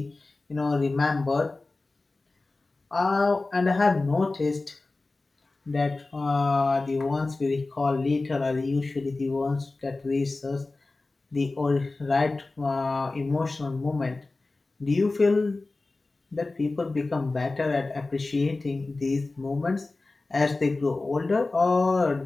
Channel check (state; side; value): quieter; right; 3.3 dB